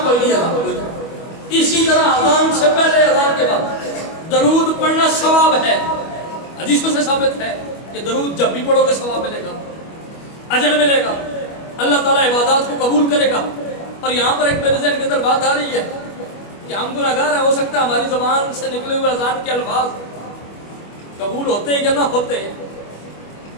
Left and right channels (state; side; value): late; right; 25 ms